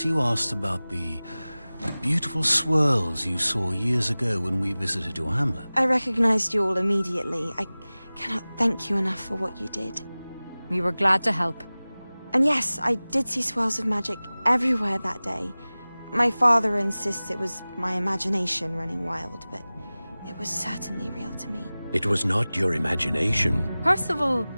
you asked about the beautiful swirls you saw years ago when we visited your hamlet. I recognized you all immediately. I cannot thank you enough for what you did. We were glad to help. And yes, I did see swirls of magic everywhere that day. My father insists it was my imagination running wild, but it was certainly real to me. It was not your imagination. Percival,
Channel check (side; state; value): both; inverted; correlation -0.99